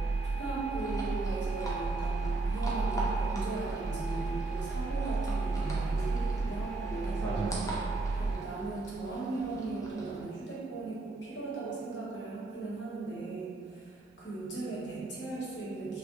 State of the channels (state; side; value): quieter; left; 3.1 dB